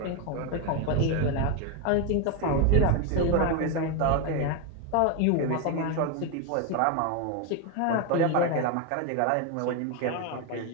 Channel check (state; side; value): different; both; correlation 0.02